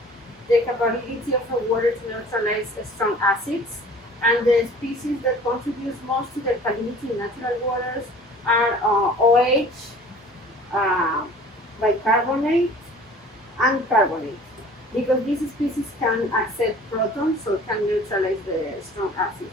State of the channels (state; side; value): normal; both; correlation 0.47